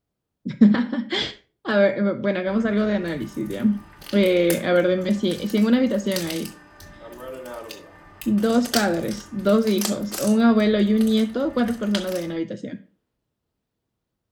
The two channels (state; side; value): identical; both; correlation 1.00